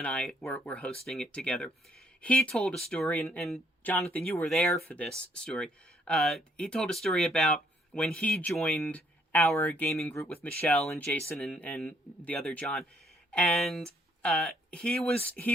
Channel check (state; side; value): normal; both; correlation 0.69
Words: I were hosting it together, he told a story, and Jonathan, you were there for this story. He told a story about when he joined our gaming group with Michelle and Jason and the other John, and he